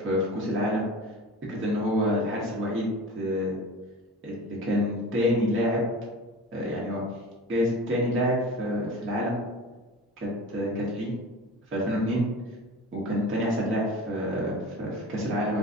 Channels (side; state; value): both; normal; correlation 0.36